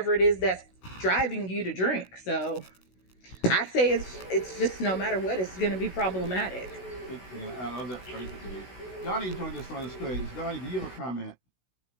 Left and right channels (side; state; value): right; late; 16 ms